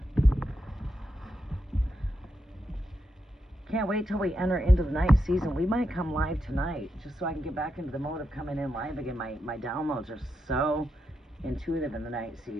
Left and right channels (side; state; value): both; normal; correlation 0.85